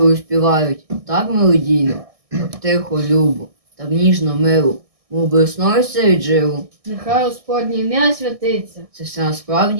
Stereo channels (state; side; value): late; left; 1.6 ms